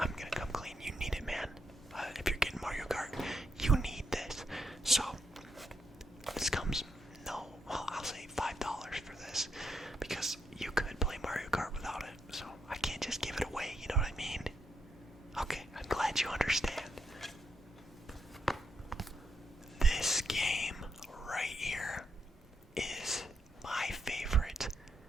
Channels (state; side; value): normal; both; correlation 0.81